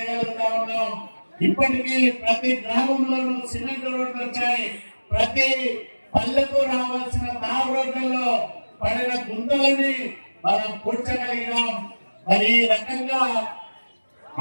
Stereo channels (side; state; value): both; inverted; correlation -1.00